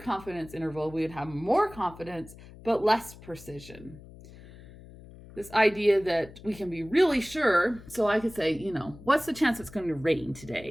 interval, we would have more confidence but less precision. This idea that we can be really sure, so I could say, what's the chance it's going to rain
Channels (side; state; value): left; noise; hum, 19 dB below the sound